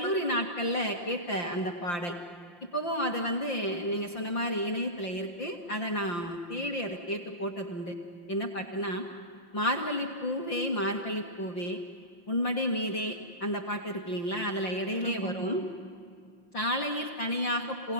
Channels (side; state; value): right; late; 5.8 ms